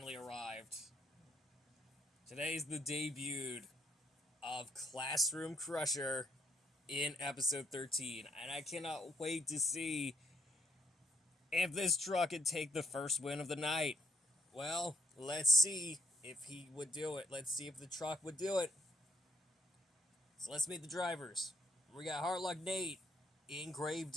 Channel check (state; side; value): normal; both; correlation 0.71